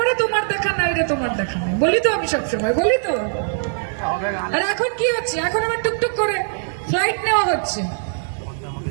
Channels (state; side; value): silent; left; digital silence